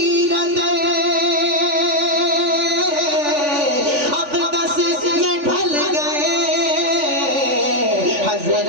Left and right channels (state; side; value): late; left; 3.5 ms